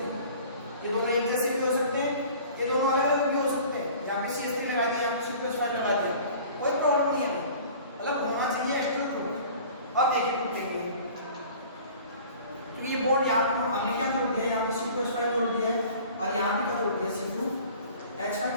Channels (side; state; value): both; inverted; correlation -0.46